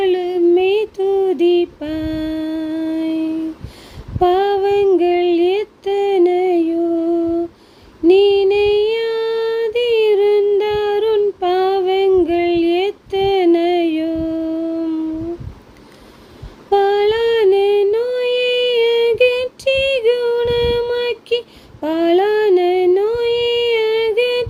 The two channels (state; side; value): identical; both; correlation 1.00